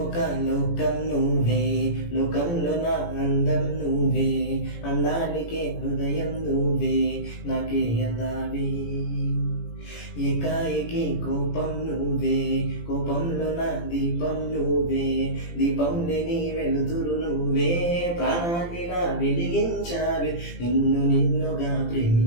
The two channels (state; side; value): late; right; 17 ms